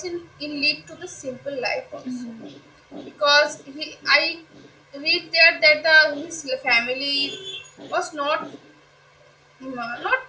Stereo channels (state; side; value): identical; both; correlation 1.00